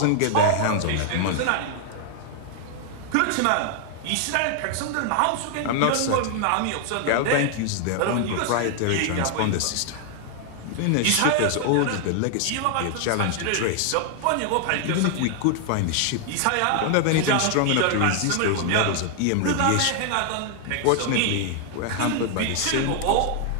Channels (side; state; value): both; different; correlation 0.00